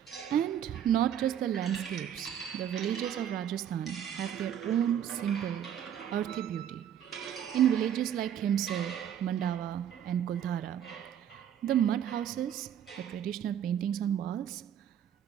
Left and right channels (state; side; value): quieter; left; 9.7 dB